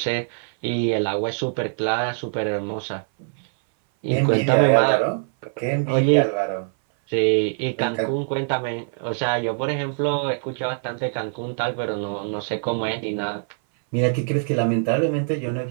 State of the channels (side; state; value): left; silent; 58 dB below the other